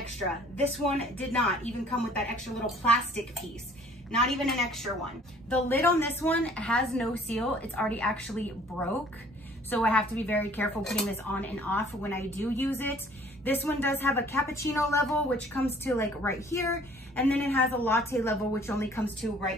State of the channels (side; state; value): both; normal; correlation 0.55